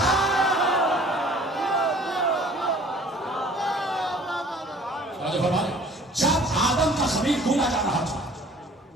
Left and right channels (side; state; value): both; normal; correlation 0.51